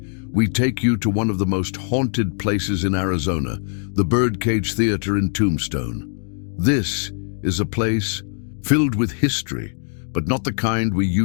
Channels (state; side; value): silent; right; digital silence